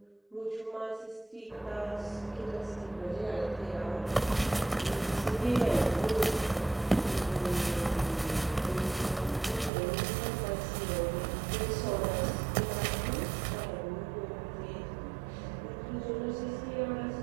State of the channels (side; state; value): left; drops out; at 9.7 s